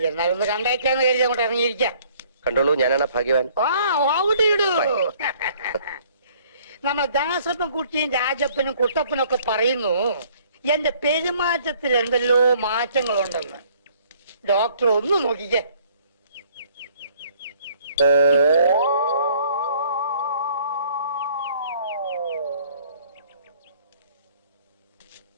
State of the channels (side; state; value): both; inverted; correlation -0.59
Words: എന്നാലും ഒന്ന് കണ്ടേക്കാന്ന് കരുതി അങ്ങോട്ട് ഇറങ്ങിയിരിക്കാം. കണ്ടോളൂ, ഞാനാണ് ഭാഗ്യവാൻ. നമ്മ ദാസപ്പൻ കുട്ടിയും രാജപ്പനും കുട്ടപ്പനും ഒക്കെ പറയുന്നു എന്റെ പെരുമാറ്റത്തിൽ എന്തെല്ലോ മാറ്റങ്ങളുണ്ടെന്ന്. ഡോക്ടർ ഒന്ന് നോക്കിക്കേ.